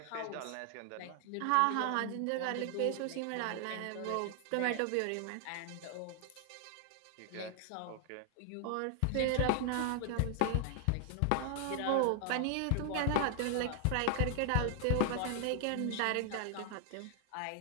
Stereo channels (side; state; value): both; different; correlation 0.00